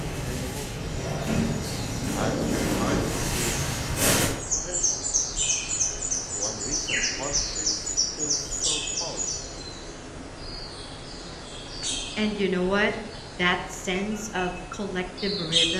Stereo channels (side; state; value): both; identical; correlation 1.00